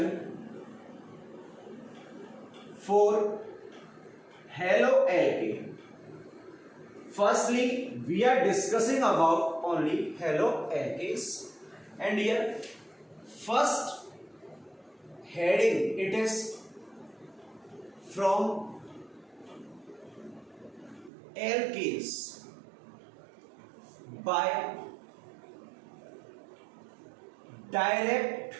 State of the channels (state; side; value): drops out; left; at 21.1 s